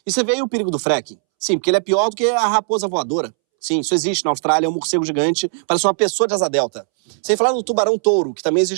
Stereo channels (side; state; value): left; silent; 67 dB below the other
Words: E você vê aí o perigo do fracking? Sim, porque ele é pior do que a raposa voadora. Sim, isso existe na Austrália, é um morcego gigante, parece uma pessoa de asa delta. Sem falar no tubarão-touro, que também